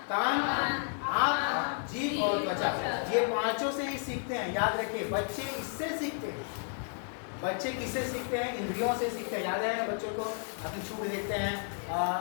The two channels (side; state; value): right; silent; 56 dB below the other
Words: कान, आँख, जीभ और त्वचा। ये 5 से ही सीखते हैं, याद रखिए। बच्चे इससे सीखते हैं। बच्चे किससे सीखते हैं? इंद्रियों से सीखते हैं। याद है ना, बच्चों को अपनी छू के देखते हैं,